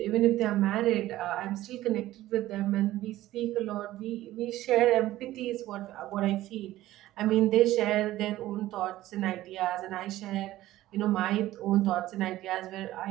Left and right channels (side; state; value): left; quieter; 15.4 dB